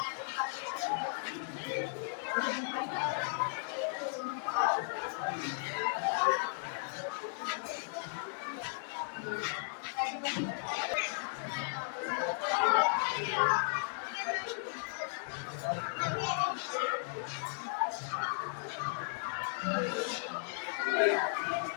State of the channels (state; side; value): silent; right; digital silence